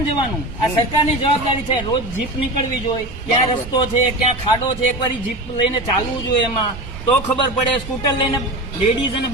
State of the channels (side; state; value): right; noise; rumble, 12 dB below the sound